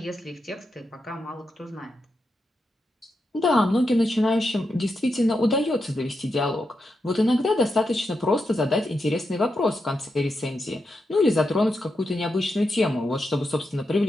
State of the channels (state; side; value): normal; both; correlation 0.86